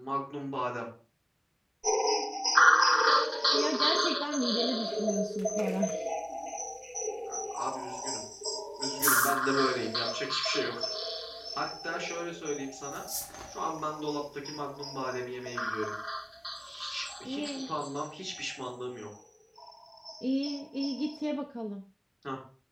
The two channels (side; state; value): both; identical; correlation 1.00